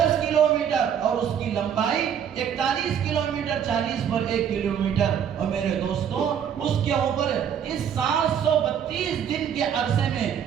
کلومیٹر اور اس کی لمبائی 41 کلومیٹر، 40 پر 1 کلومیٹر۔ اور میرے دوستوں، اس کے اوپر اس 732 دن کے عرصے میں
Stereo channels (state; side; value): quieter; left; 8.5 dB